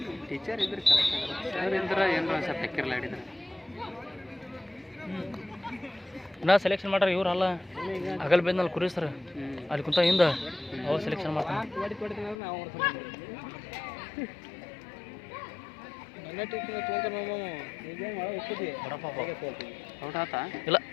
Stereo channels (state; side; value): drops out; right; at 12.4 s